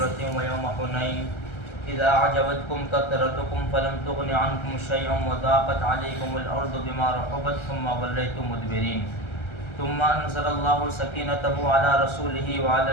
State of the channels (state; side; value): late; right; 1.3 ms